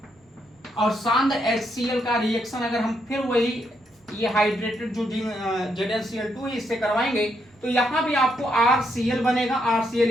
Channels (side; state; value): both; normal; correlation 0.78